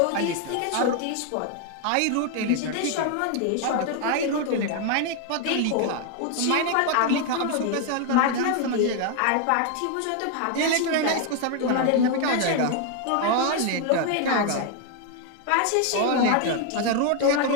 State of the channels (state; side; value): different; both; correlation 0.01